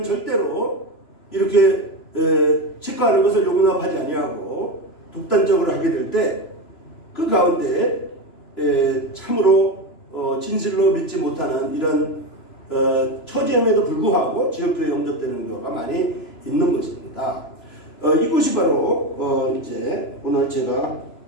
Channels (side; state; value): right; late; 3.0 ms